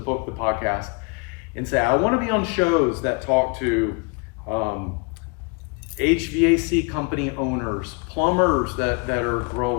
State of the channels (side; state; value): right; quieter; 31.7 dB